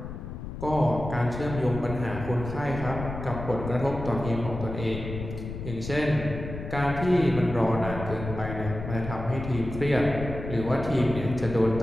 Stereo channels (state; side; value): noise; left; rumble, 8 dB below the sound